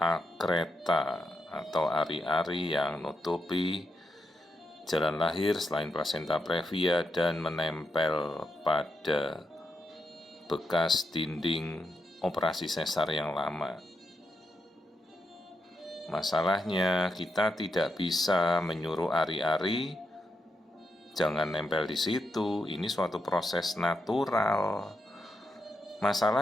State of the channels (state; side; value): normal; both; correlation 0.83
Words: atau ari-ari yang nutupi jalan lahir selain plasenta previa dan menempel pada bekas dinding operasi sesar yang lama. Masalahnya kita tidak bisa menyuruh ari-ari jangan nempel di situ, ini suatu proses natural.